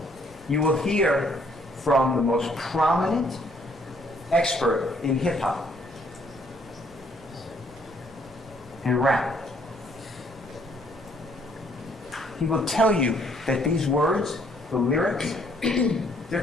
You will hear from the most prominent expert in hip-hop and rap. He will tell you that these words, the lyrics,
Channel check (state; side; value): normal; both; correlation 0.65